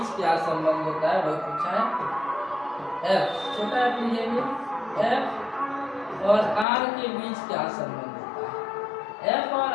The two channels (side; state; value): right; drops out; at 6.7 s